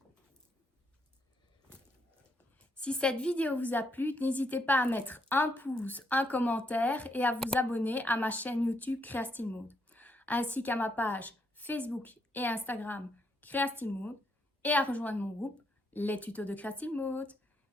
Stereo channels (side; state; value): both; normal; correlation 0.76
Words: Si cette vidéo vous a plu, n'hésitez pas à mettre un pouce, un commentaire et à vous abonner à ma chaîne YouTube Créastyle Mode, ainsi qu'à ma page Facebook et Instagram Créastyle Mode et à rejoindre mon groupe Les Tutos de Créastyle Mode.